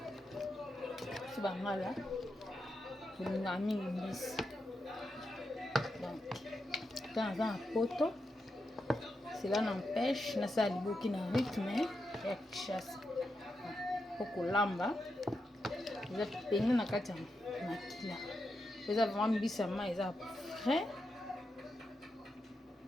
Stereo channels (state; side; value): normal; both; correlation 0.86